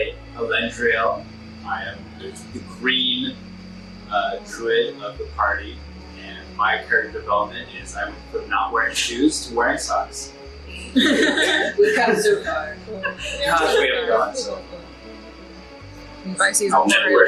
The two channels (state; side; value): identical; both; correlation 1.00